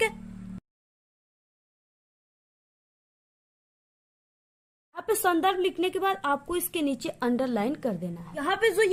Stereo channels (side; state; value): both; identical; correlation 1.00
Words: है। यहाँ पे संदर्भ लिखने के बाद आपको इसके नीचे अंडरलाइन कर देना है। यहाँ पे जो